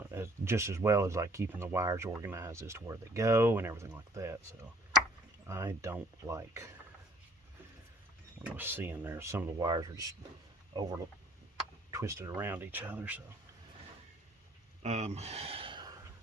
just as well as like keeping the wires organized as to where they go and everything like that. So I don't like what I was seeing there. Some of the wires are just over twisted around each other. So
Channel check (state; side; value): normal; both; correlation 0.58